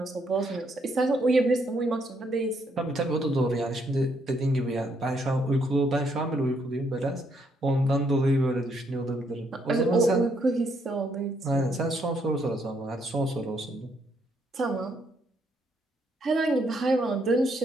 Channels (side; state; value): both; normal; correlation 0.73